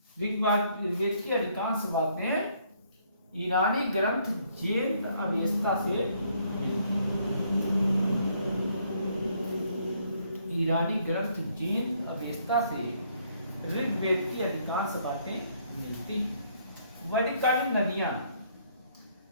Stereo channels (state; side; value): inverted; both; correlation -0.68